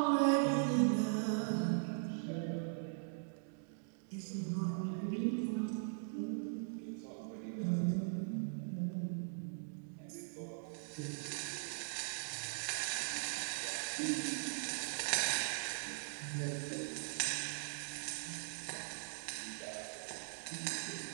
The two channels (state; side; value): silent; left; digital silence